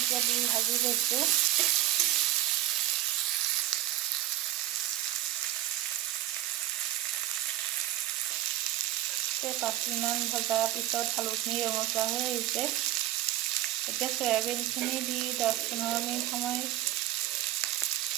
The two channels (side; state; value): left; quieter; 14.4 dB